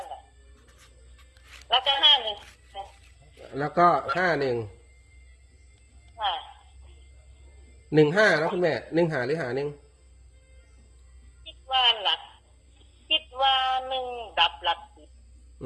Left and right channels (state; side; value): identical; both; correlation 1.00